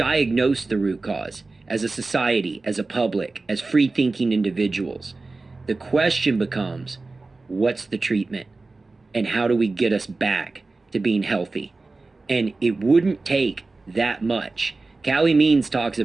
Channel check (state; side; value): quieter; left; 3.5 dB